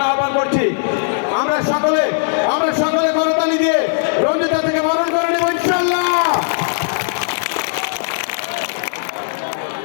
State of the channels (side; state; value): right; silent; digital silence